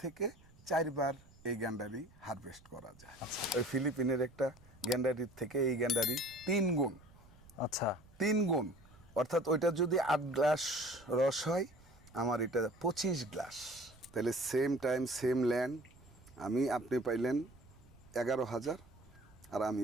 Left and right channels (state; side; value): noise; right; rumble, 24 dB below the sound